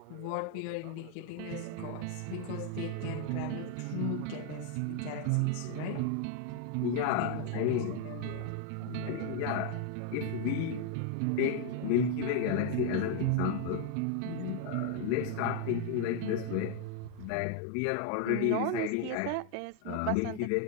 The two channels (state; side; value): different; both; correlation 0.01